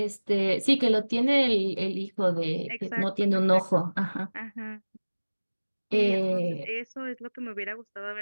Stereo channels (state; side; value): inverted; both; correlation -1.00